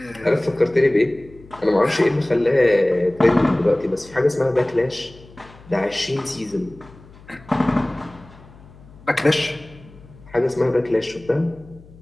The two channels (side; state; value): left; noise; hum, 23 dB below the sound